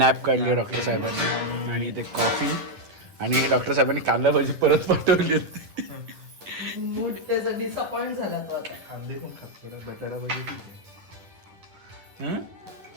काढली आहे डॉक्टर साहेबांनी. आणि ते कॉफी. आणि डॉक्टर साहेबांनी कांदा भाजी परत पाठवली. मूड त्याचा डिसअपॉइंट झाला तो आता. कांदे पण खातो, बटाटा भाजी ठीक आहे.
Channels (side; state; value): left; late; 10 ms